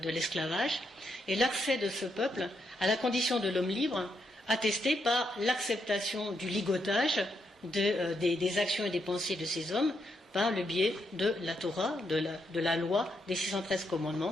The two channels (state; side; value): normal; both; correlation 0.79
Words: l'esclavage, et l'accès de ce peuple à la condition de l'homme libre, attesté par l'acceptation du ligotage des actions et des pensées de ces hommes, par le biais de la Torah, de la loi des 613